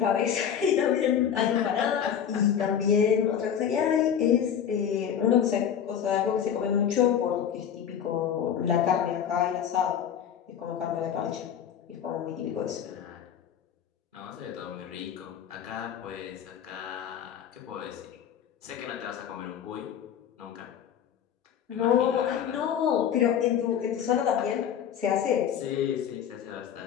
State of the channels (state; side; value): quieter; right; 8.7 dB